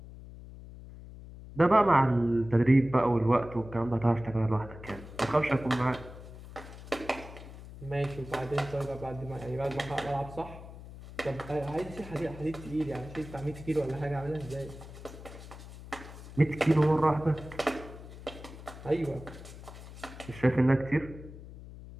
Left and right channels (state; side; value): noise; left; hum, 15 dB below the sound